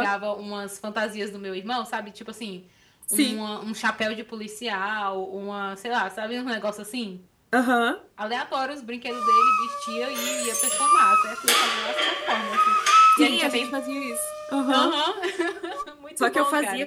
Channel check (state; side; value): identical; both; correlation 1.00